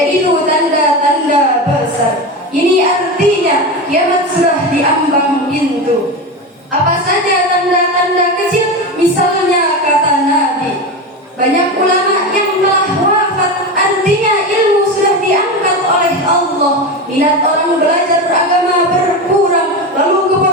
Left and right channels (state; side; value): normal; both; correlation 0.21